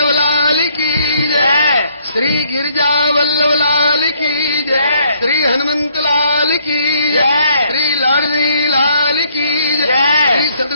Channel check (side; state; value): both; inverted; correlation -0.67